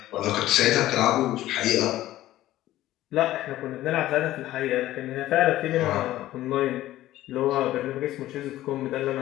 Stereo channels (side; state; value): right; quieter; 14.8 dB